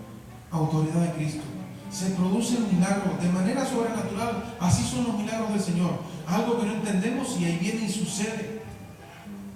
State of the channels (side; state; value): both; identical; correlation 1.00